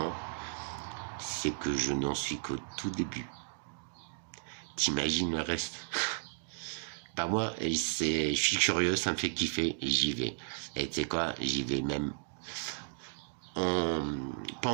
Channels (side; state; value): left; silent; digital silence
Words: c'est que je n'en suis qu'au tout début. T'imagines le reste? Bah moi, je suis curieux, ça me fait kiffer, et j'y vais. Et tu sais quoi, j'y vais même pas